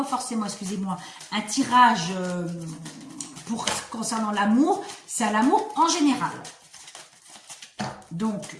forcément, excusez-moi, un tirage concernant l'amour. C'est à l'amour en général. Donc,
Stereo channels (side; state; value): both; identical; correlation 1.00